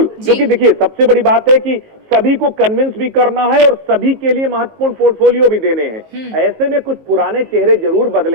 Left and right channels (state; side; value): late; left; 19 ms